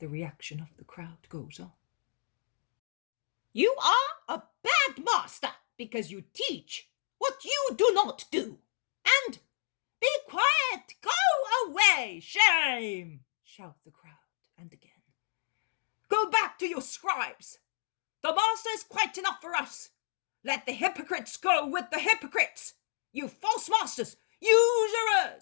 reaction of the crowd, goes on. You are a bad master because you teach what you do not do. And be quiet, go away, shame, shout the crowd, and again. Go back to your scribes. The master is quite enough for us. Let the hypocrites go with the hypocrites. You false masters,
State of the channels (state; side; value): silent; right; digital silence